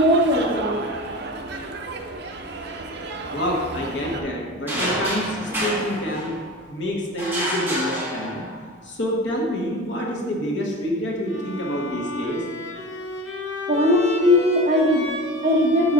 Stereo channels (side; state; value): both; normal; correlation 0.32